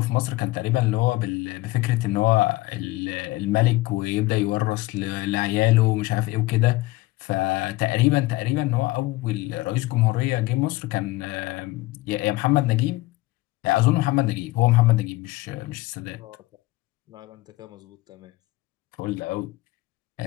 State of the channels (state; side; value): quieter; right; 19.1 dB